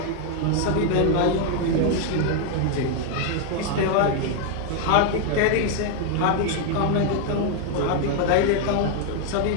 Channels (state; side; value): different; both; correlation 0.00